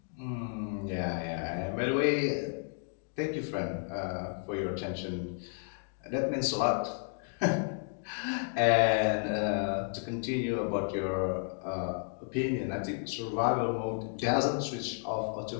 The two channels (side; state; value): right; silent; 56 dB below the other